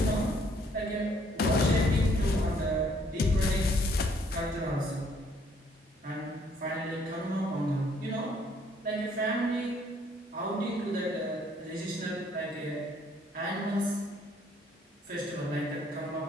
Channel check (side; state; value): both; normal; correlation 0.65